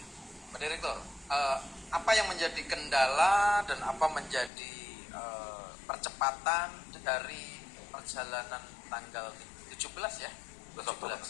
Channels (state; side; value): drops out; right; at 4.5 s